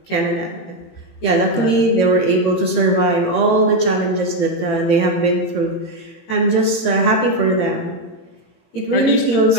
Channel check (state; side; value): late; right; 18 ms